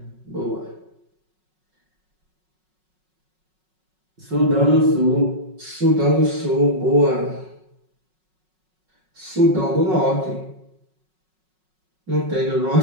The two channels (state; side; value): late; left; 5.4 ms